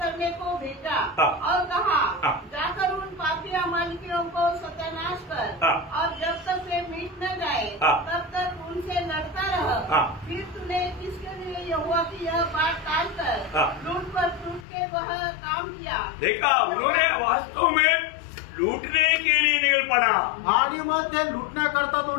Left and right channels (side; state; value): right; drops out; at 14.7 s